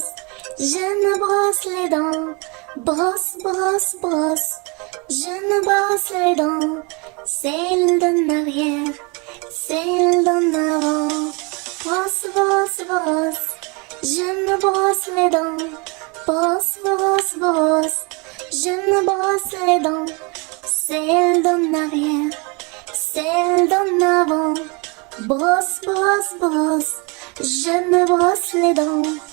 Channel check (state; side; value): quieter; left; 30.7 dB